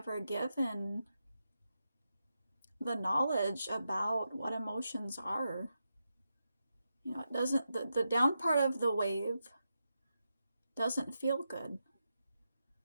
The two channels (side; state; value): both; inverted; correlation -0.87